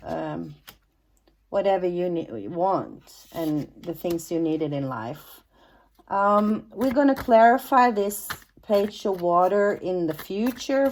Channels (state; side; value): identical; both; correlation 1.00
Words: whatever you want and the things you needed in life. We're going to clarify this page of water in the future